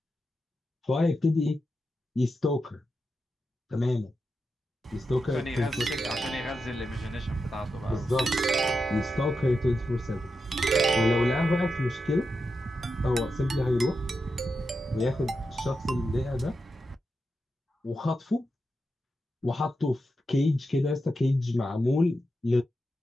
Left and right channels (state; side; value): normal; both; correlation 0.88